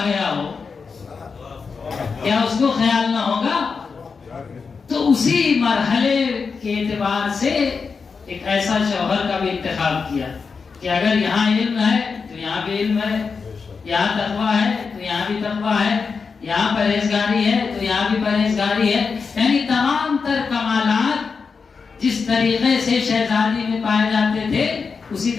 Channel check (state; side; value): quieter; right; 5.2 dB